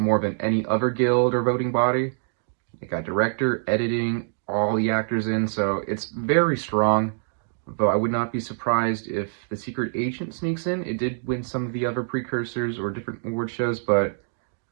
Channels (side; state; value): left; silent; digital silence